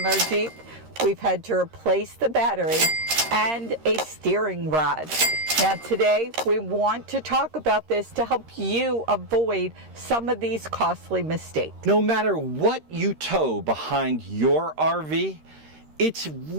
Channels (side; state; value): left; late; 13 ms